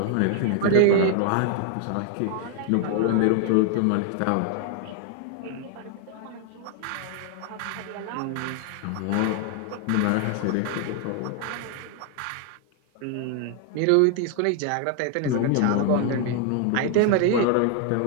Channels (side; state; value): both; different; correlation 0.00